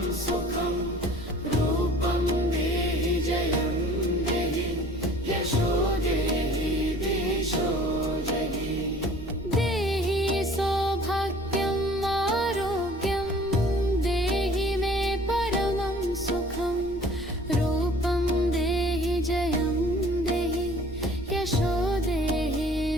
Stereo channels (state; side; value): noise; right; rumble, 17 dB below the sound